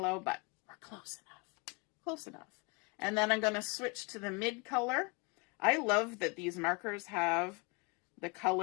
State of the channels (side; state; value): right; quieter; 30.2 dB